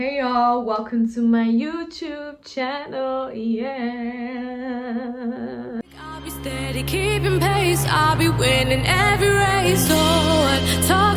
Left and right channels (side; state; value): both; identical; correlation 1.00